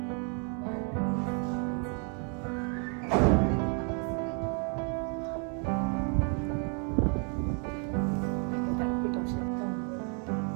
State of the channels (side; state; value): left; quieter; 39.7 dB